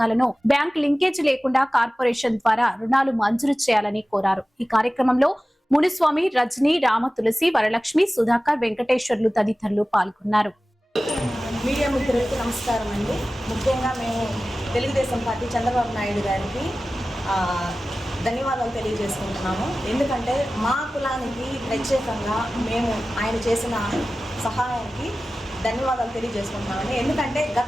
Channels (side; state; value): both; normal; correlation 0.96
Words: బ్యాంక్ లింకేజ్ లేకుండా కార్పొరేషన్ ద్వారా రుణాలు మంజూరు చేయాలని కోరారు. ఈ కార్యక్రమంలో మునిస్వామి, రజనీ, రామ, తులసి, వరలక్ష్మి, సుధాకర్, వెంకటేశ్వర్లు తదితరులు పాల్గొన్నారు. మీడియా మిత్రులకు నమస్కారం అండి. ముఖ్యంగా మేము తెలుగుదేశం పార్టీ చంద్రబాబు నాయుడు గారికి ధన్యవాదాలు తెలియజేసుకుంటున్నాము. ఎందుకంటే మా కులానికి ప్రత్యేకంగా మేము ఆయన చేసిన సహాయానికి ధన్యవాదాలు తెలియజేసుకుంటున్నామండి. ఎందుకంటే